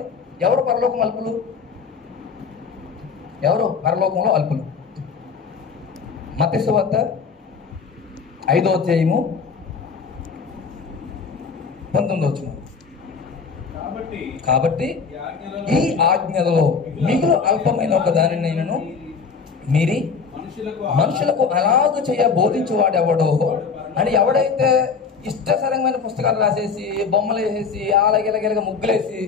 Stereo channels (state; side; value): quieter; right; 5.5 dB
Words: ఎవరు పరలోకం అల్పులు? ఎవరు పరలోకంలో అల్పులు? మత్తయి సువార్త 5వ అధ్యాయము 19వ వచనం. కాబట్టి ఈ ఆజ్ఞలలో మిగులు అల్పమైన ఒక దానినైనను మీరి మనుషులకు అలాగ చేయ బోధించేవాడు ఎవడో అని. ఎవడైతే ఇష్టసరంగమైన పుస్తకాలు రాసేసి బొమ్మలు వేసేసి అలాగెలగెలగా ముగ్గులేసి